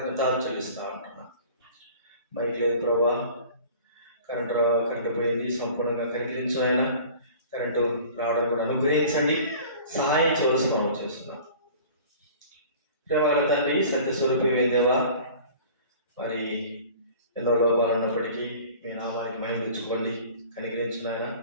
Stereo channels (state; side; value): inverted; both; correlation -0.45